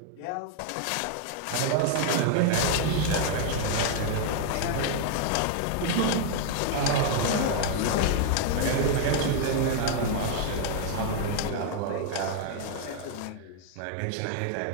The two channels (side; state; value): both; different; correlation 0.00